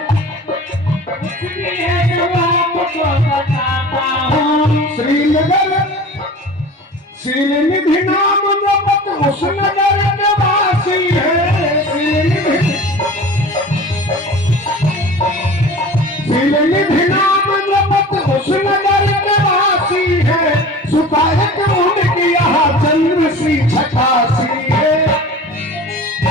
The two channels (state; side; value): normal; both; correlation 0.39